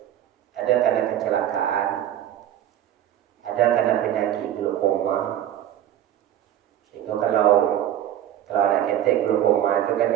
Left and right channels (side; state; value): left; quieter; 11.5 dB